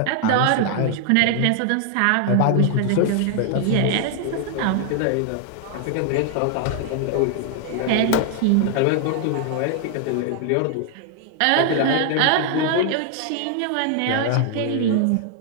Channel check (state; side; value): different; both; correlation 0.00